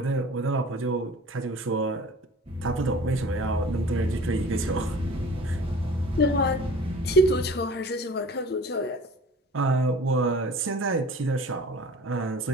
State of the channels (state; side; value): normal; both; correlation 0.44